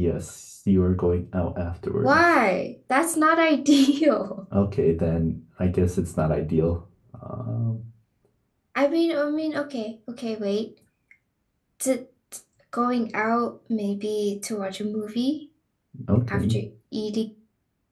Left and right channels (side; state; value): both; identical; correlation 1.00